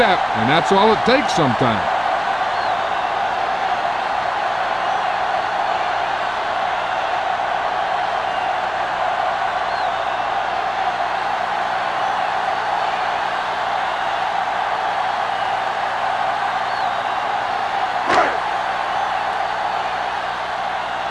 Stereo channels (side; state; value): both; identical; correlation 1.00